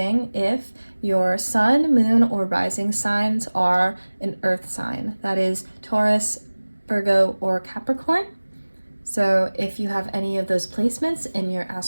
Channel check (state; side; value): inverted; both; correlation -1.00